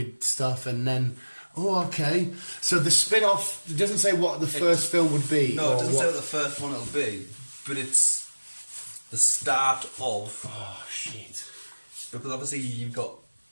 stuff, and then. Oh, okay. So the spin-off it doesn't say what the first film would be. No, it doesn't say what the first one will be, but it's the start of. Oh shit! Because obviously you've got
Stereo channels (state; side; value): inverted; both; correlation -1.00